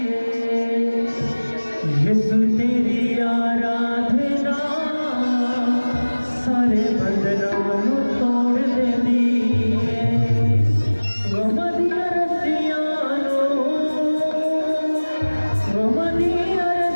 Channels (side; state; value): both; inverted; correlation -1.00